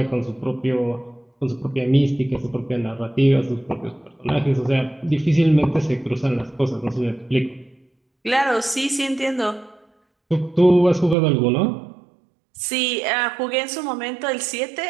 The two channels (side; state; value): left; drops out; at 11.2 s